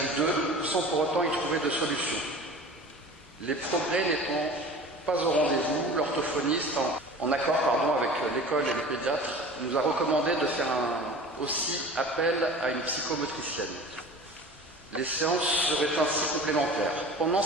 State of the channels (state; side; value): normal; both; correlation 0.40